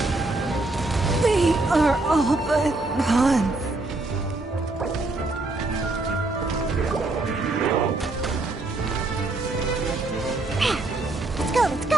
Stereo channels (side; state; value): left; quieter; 3.1 dB